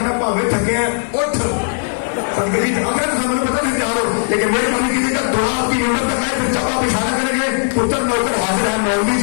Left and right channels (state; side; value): silent; right; digital silence